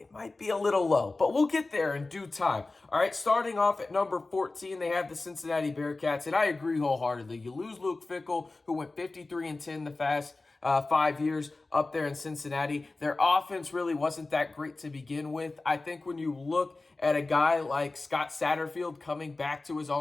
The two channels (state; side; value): quieter; right; 3.3 dB